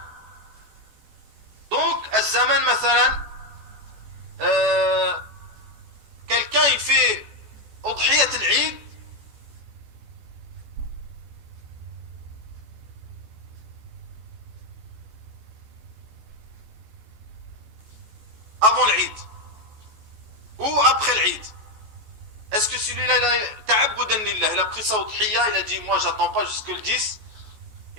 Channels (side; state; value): left; late; 14 ms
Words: Donc الزمان مثلا quelqu'un il fait أضحية العيد avant l'Eid ou après l'Eid. Est-ce que celui-là, il a ta'abbudan lillah, il a pris sa udhiya, il a dit moi j'attends pas jusque le 10,